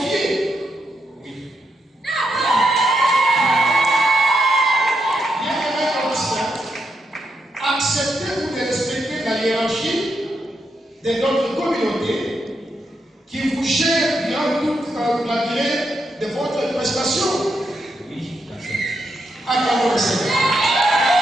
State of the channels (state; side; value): normal; both; correlation 0.82